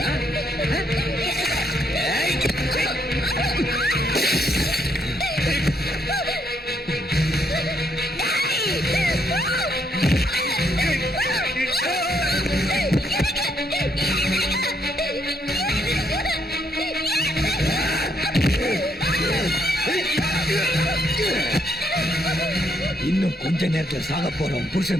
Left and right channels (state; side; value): normal; both; correlation 0.74